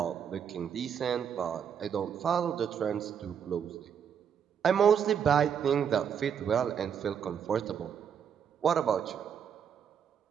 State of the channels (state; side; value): quieter; left; 7.8 dB